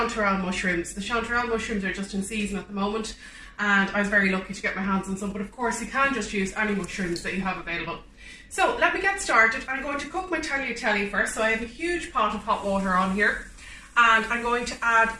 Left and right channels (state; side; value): identical; both; correlation 1.00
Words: mushrooms. The chanterelle mushrooms are just in season at the moment, and I was very lucky to get my hands on some, but of course you can just use any mushrooms that you have available. So let me get started. I'm going to cook my tagliatelle first. So I have a huge pot of hot water on here, and I'm going to add